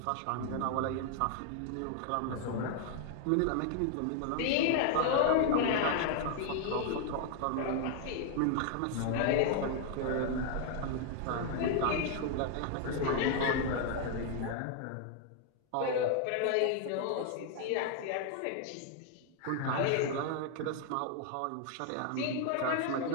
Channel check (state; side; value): different; both; correlation 0.00